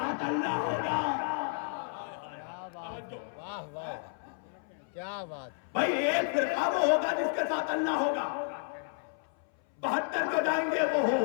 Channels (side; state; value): right; silent; 57 dB below the other